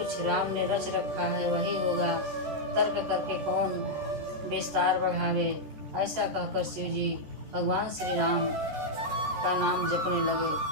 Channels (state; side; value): late; left; 14 ms